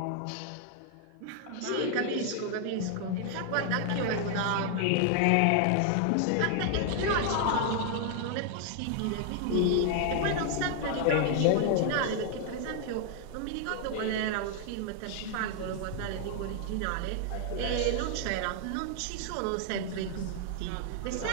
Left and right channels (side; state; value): both; different; correlation 0.00